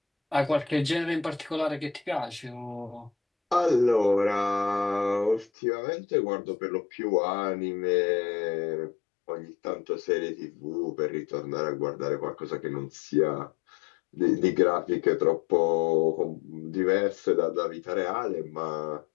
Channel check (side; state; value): right; drops out; at 5.5 s